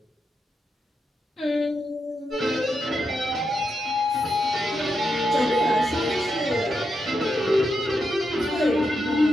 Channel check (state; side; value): normal; both; correlation 0.84